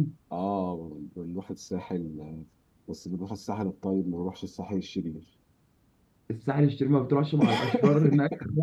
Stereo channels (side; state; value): both; identical; correlation 1.00